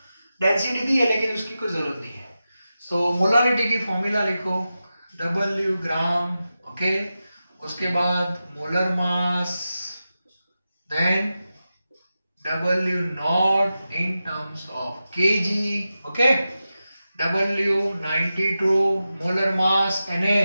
डेंसिटी दी है लेकिन उसकी कोई जरूरत नहीं है। सो मोलारिटी की फॉर्मूला लिखो, W ग्राम, ओके, उसके बाद molar mass, then W not in terms of kg, okay, W 92, molar mass Na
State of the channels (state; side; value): inverted; both; correlation -0.92